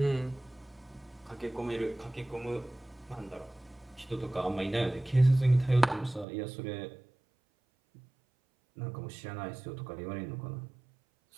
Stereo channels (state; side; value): drops out; left; at 6.2 s